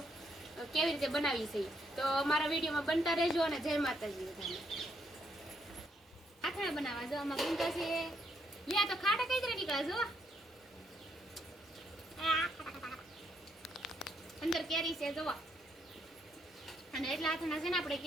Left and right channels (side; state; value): both; normal; correlation 0.75